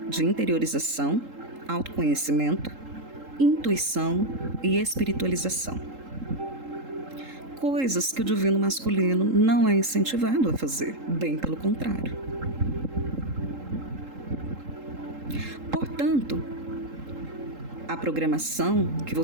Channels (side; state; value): left; late; 3.8 ms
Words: de interiorização, autoconhecimento, intuição e espiritualização. Coisas que o divino masculino não é incentivado a fazer, bem pelo contrário. Portanto, a programação que